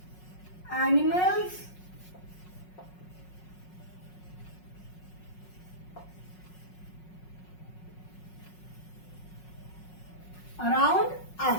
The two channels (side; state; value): right; late; 5.5 ms